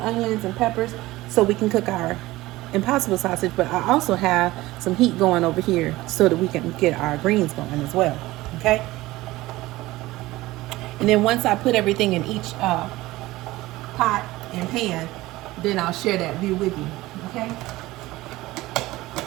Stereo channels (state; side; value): quieter; left; 18.4 dB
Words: onions and peppers so we can cook our Impossible sausage. But I also have some heat going over here so that we can get our greens going as well. Okay? And then once I put everything in each pot and pan, then I'll share that view with you. Okay?